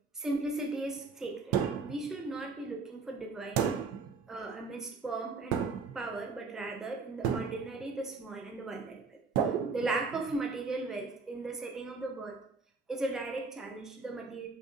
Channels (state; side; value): quieter; left; 4.4 dB